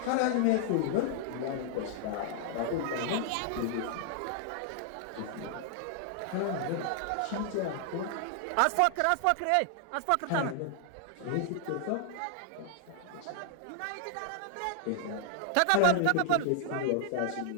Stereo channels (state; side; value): different; both; correlation -0.01